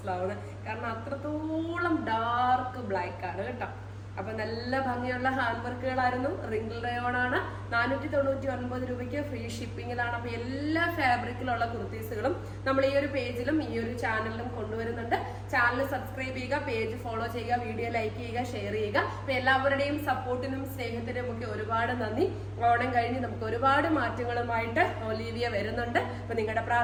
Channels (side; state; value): both; identical; correlation 1.00